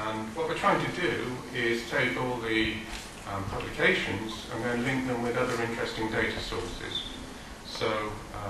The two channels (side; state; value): both; identical; correlation 1.00